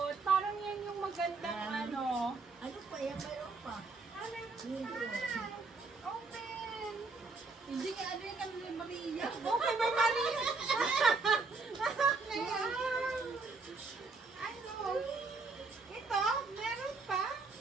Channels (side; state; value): left; quieter; 4.0 dB